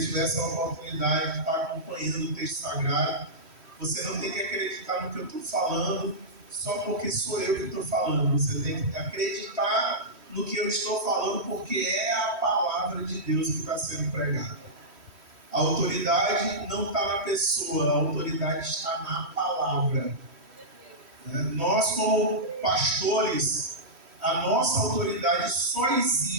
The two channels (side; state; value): left; late; 3.1 ms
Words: tivesse a oportunidade de estar acompanhando o texto sagrado. Você não tem que acreditar no que eu estou falando só porque sou eu que estou falando. Você tem que acreditar no que eu estou falando, porque é a palavra de Deus que está sendo pregada. A autoridade não está na pessoa, a autoridade está na palavra. Nós, como pastores, a nossa autoridade só